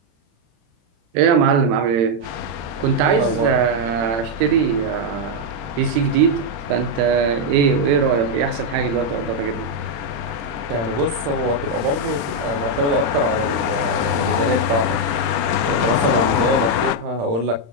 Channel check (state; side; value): late; left; 35 ms